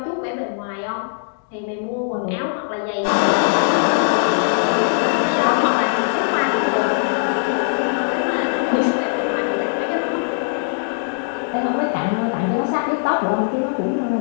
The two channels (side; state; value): right; silent; digital silence